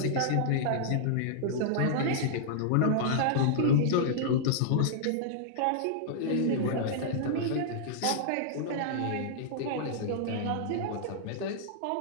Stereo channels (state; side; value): different; both; correlation -0.01